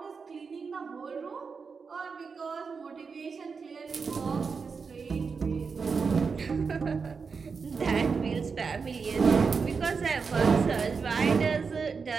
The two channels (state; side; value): quieter; left; 5.2 dB